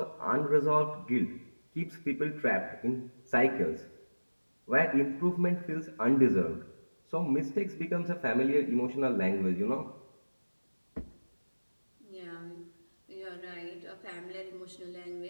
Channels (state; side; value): inverted; both; correlation -1.00